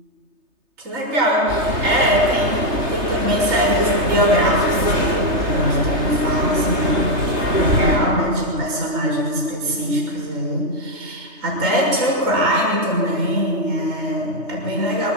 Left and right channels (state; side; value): late; left; 3.3 ms